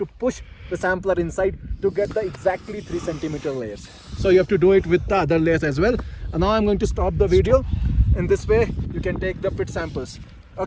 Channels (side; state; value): both; identical; correlation 1.00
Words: push the sampler inside to get the exactly 3 centimeter layers. So you have to do it with the other layers as well. And now I'm going to stop the video. In this way you can take the pit samples.